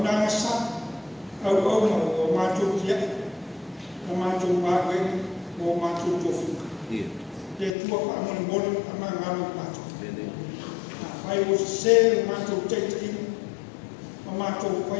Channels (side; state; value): right; drops out; at 7.8 s